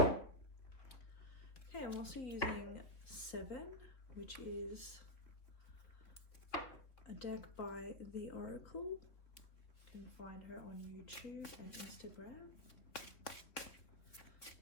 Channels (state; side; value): late; right; 3.6 ms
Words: I'm also using 7, which is a deck by The Oracle. You can find her on YouTube and Instagram.